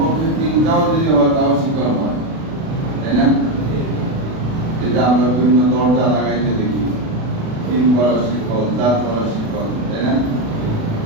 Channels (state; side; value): late; left; 36 ms